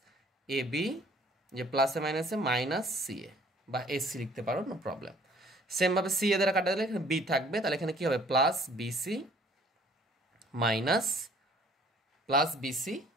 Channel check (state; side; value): normal; both; correlation 0.57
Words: এ বি, যে প্লাসে মাইনাসে মাইনাস সি এ বা এসি লিখতে পারো, নো প্রবলেম। সেম ভাবে সি এ দ্বারা কাটা দিলে এখানে বি থাকবে, তাহলে এখানে কি হবে প্লাস বিসি মাইনাস